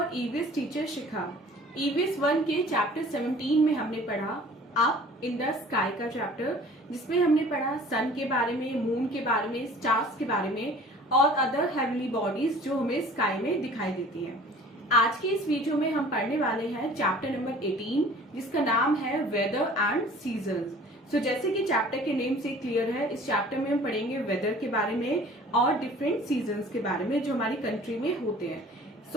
EVS teacher Shikha. EVS 1 के chapter 17 में हमने पढ़ा अप इन द स्काई का चैप्टर, जिसमें हमने पढ़ा सन के बारे में, मून के बारे में, स्टार्स के बारे में और अदर हेवनली बॉडीज जो हमें स्काई में दिखाई देती हैं। आज के इस वीडियो में हम पढ़ने वाले हैं चैप्टर नंबर 18, जिसका नाम है वेदर एंड सीजन्स। सो जैसे कि चैप्टर के नेम से क्लियर है, इस चैप्टर में हम पढ़ेंगे वेदर के बारे में और डिफरेंट सीजन्स के बारे में जो हमारी कंट्री में होते हैं।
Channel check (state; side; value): normal; both; correlation 0.48